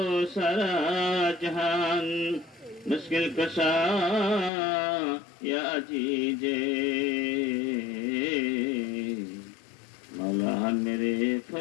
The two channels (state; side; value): drops out; right; at 4.5 s